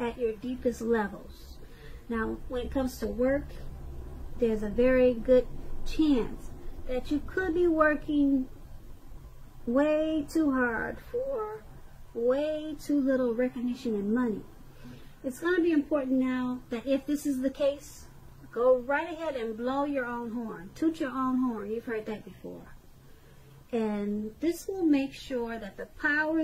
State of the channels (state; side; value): identical; both; correlation 1.00